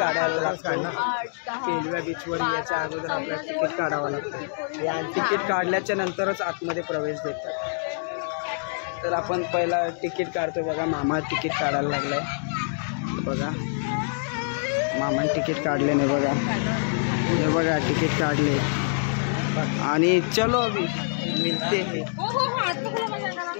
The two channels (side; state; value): right; silent; digital silence